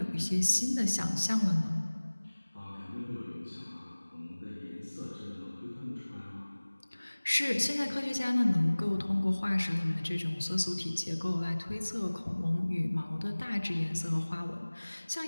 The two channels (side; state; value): both; inverted; correlation -1.00